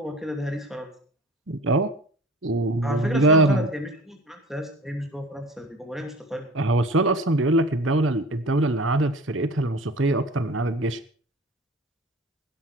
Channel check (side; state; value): both; normal; correlation 0.40